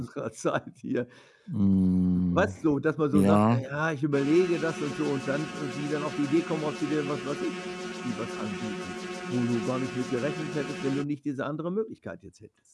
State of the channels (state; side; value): identical; both; correlation 1.00